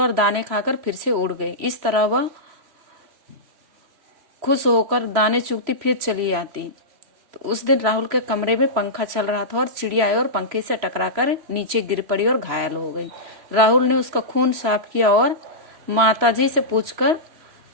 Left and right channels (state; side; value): late; left; 3.0 ms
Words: दाने खाकर फिर से उड़ गई। इस तरह वह खुश होकर दाने चुगती फिर चली आती। तो उस दिन राहुल के कमरे में पंखा चल रहा था और चिड़िया आई और पंखे से टकराकर नीचे गिर पड़ी और घायल हो गई। राहुल ने उसका खून साफ किया और माताजी से पूछकर